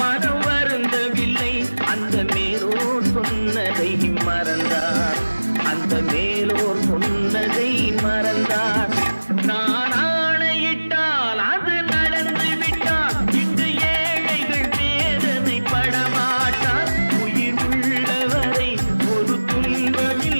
மனம் வருந்தவில்லை, அந்த மேலோர் சொன்னதை மறந்தார், அந்த மேலோர் சொன்னதை மறந்தார்.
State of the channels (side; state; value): both; inverted; correlation -1.00